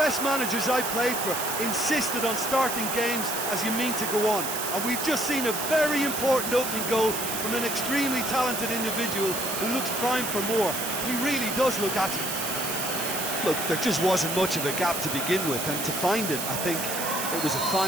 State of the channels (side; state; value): right; noise; hiss, 3 dB below the sound